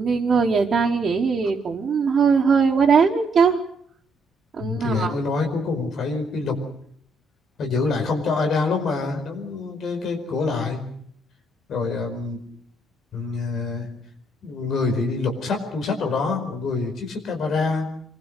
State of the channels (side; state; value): both; normal; correlation 0.71